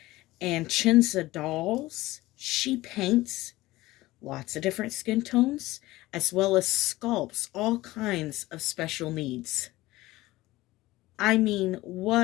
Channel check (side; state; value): right; quieter; 18.3 dB